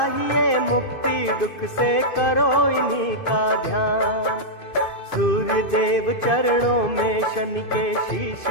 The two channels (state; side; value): late; right; 2.6 ms